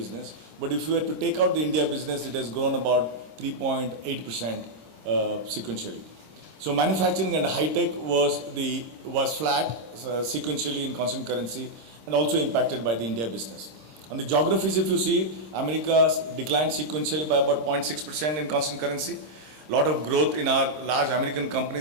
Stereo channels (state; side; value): late; left; 26 ms